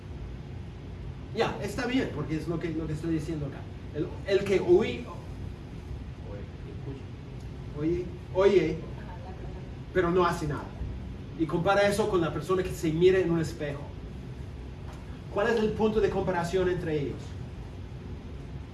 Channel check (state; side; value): identical; both; correlation 1.00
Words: Ya, está bien, porque es lo que estoy diciendo acá. El que oye, Ajá, la palabra. pero no hace nada. Y compara eso con la persona que se mira en un espejo. ¿Cuál es el punto de comparación entre ellos?